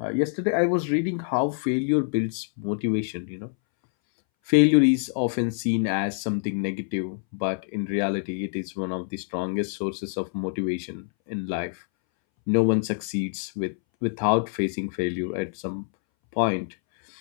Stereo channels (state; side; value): silent; right; 61 dB below the other